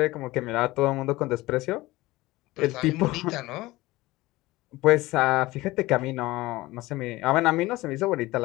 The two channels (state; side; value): quieter; right; 19.3 dB